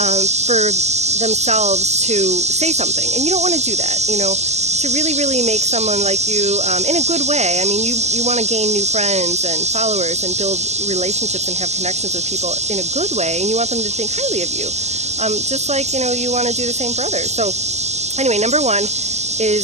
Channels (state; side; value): late; left; 0.33 ms